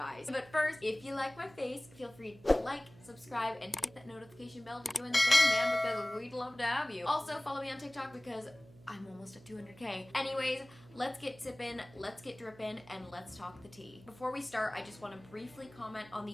But first, if you like my face, feel free to like, subscribe, and hit that notification bell to join the fam bam because we'd love to have you. Also, follow me on TikTok because I'm almost at 200K. Anyways, let's get sippin', let's get drippin', and let's talk the tea. Before we start, I just want to briefly comment on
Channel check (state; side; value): noise; right; hum, 23 dB below the sound